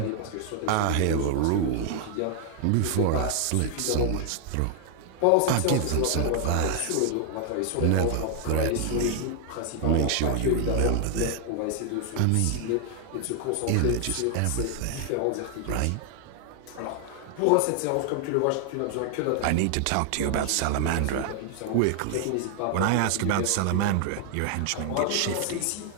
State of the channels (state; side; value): different; both; correlation 0.00